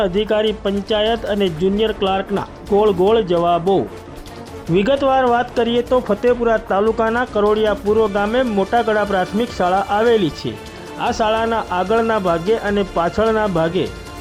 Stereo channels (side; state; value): both; identical; correlation 1.00